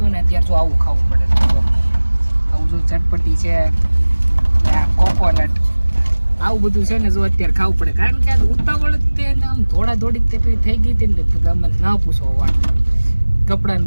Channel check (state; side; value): inverted; both; correlation -1.00